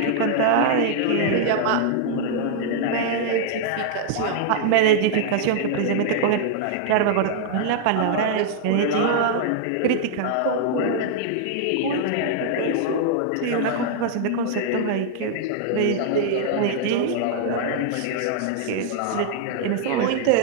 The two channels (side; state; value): both; different; correlation -0.01